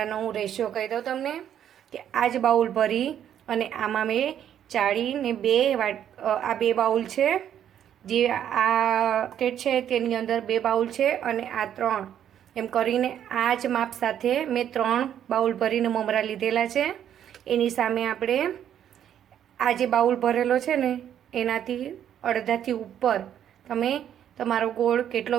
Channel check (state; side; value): quieter; left; 9.9 dB